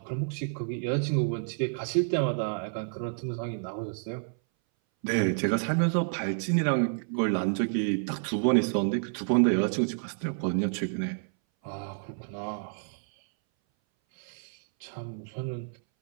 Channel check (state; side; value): silent; left; 58 dB below the other